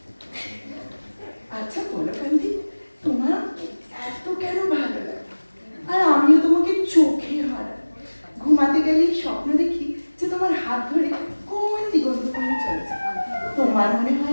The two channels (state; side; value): inverted; both; correlation -1.00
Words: আচ্ছা বলো কান্তি, তোমার এত কেন ভালো লাগে? আর আমিও তোমাকে চোখে হারাই। ঘুমাতে গেলেই স্বপ্ন দেখি যে তোমার হাত ধরে কোন দিগন্ত পানে চলেছে। তোমার মনে